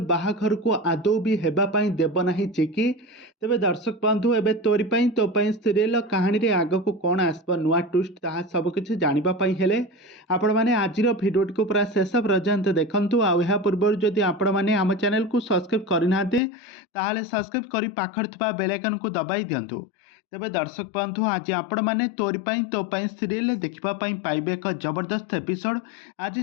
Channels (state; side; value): drops out; right; at 16.4 s